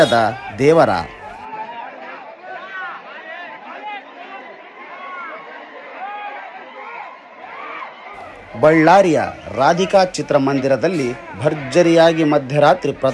ದೇವರ. ಬಳ್ಳಾರಿಯ ರಾಧಿಕಾ ಚಿತ್ರಮಂದಿರದಲ್ಲಿ ಭರ್ಜರಿಯಾಗಿ ಮಧ್ಯರಾತ್ರಿ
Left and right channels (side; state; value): both; identical; correlation 1.00